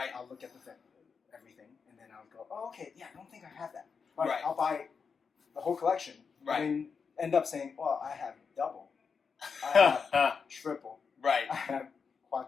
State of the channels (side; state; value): right; quieter; 5.7 dB